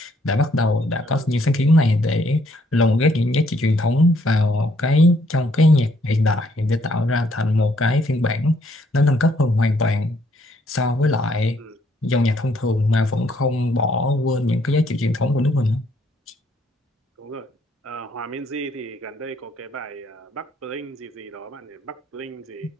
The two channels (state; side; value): normal; both; correlation 0.68